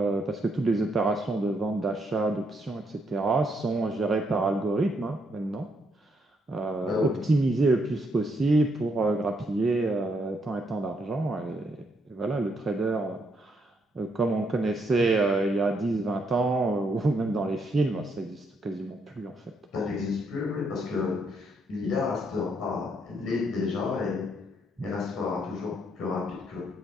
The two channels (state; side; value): normal; both; correlation 0.75